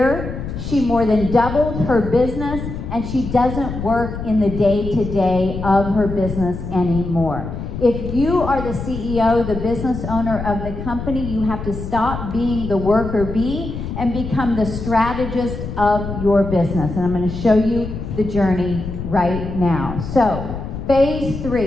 she more than doubled her business, and she doesn't work in the day-to-day of her business anymore. If you are the CEO, the business owner of the company, you have to stop being the worker bee and become the strategist of your business. And I'm going to show you the journey right now. So, phase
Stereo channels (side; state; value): left; noise; rumble, 7 dB below the sound